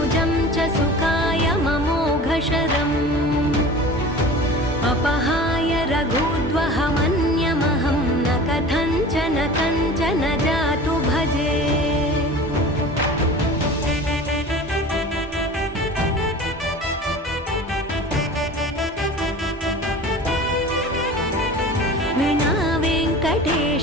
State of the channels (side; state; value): both; normal; correlation 0.38